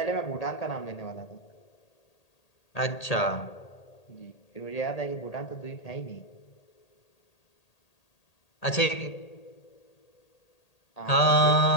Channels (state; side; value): late; right; 1.8 ms